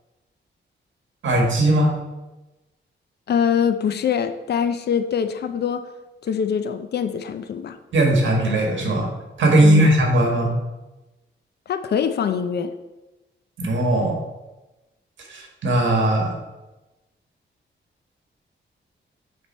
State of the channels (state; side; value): normal; both; correlation 0.50